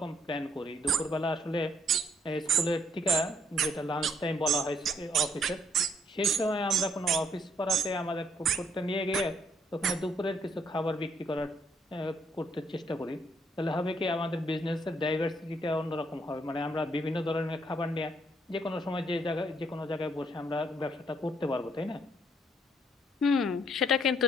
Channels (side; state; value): both; normal; correlation 0.69